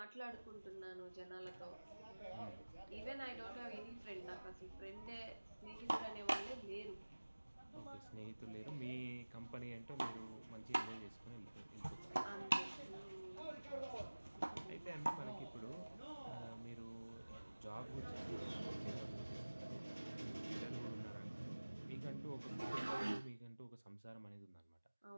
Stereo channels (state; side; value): inverted; both; correlation -1.00